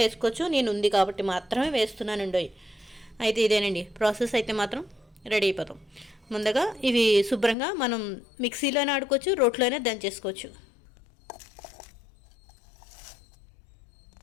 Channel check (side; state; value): right; drops out; at 7.6 s